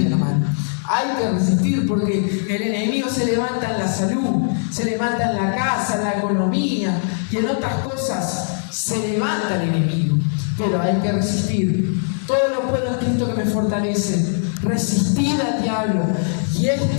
hermano. Hay que resistir porque el enemigo se levanta en la salud, se levanta en la casa, en la economía y en otras cosas se levanta el enemigo. Pero hay que resistir. Todo lo puedo en Cristo que me fortalece. Resistid al diablo y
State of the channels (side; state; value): right; silent; digital silence